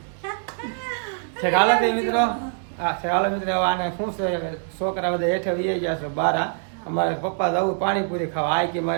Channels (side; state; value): left; silent; digital silence